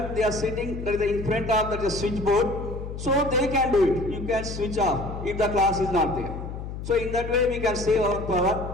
they are sitting in front of the switchboard, so they can do it. You can switch off if the class is not there. So in that way we can save our power.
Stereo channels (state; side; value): noise; left; hum, 8 dB below the sound